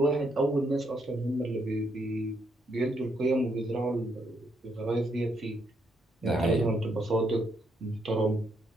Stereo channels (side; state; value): both; normal; correlation 0.76